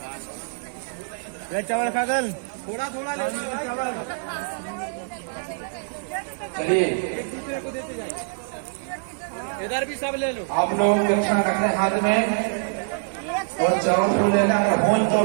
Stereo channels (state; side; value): silent; left; digital silence